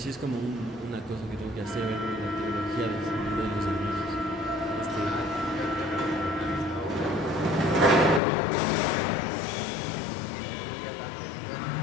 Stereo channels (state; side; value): drops out; right; at 8.2 s